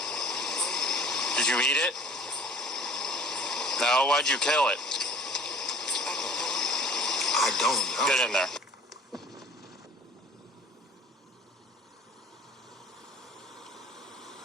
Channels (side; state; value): both; normal; correlation 0.49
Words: Did you eat it? No, why'd you kill it? I don't know. Get in there.